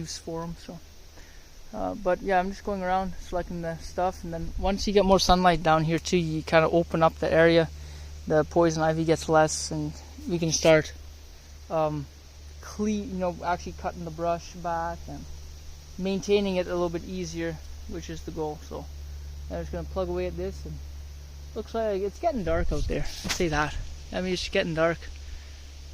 for them. So, but yeah, I'm just going around selecting the stuff, and then once you get more sunlight down here too, you kind of open up the area. The poison ivy gets less, and we can start actually cutting the brush back and maintaining it a little bit easier, which is the goal. So I'm just going to plug away at this, and looks like it's getting dark out there. I'll say that. I mean, it's getting dark.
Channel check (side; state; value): both; identical; correlation 1.00